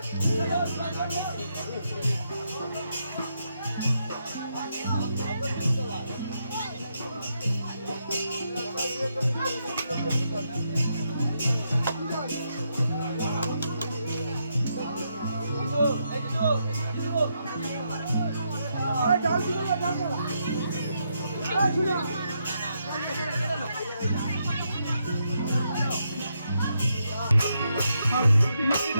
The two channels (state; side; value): inverted; both; correlation -0.80